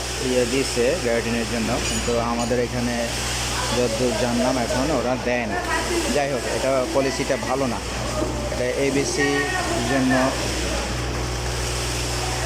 দিয়েছে গ্যারাটিনের জন্য, কিন্তু আমাদের এখানে যতদূর জানলাম এখন ওরা দেয় না। যাই হোক, এটা পলিসিটা ভালো না। এটা এবিসির জন্য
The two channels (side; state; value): both; identical; correlation 1.00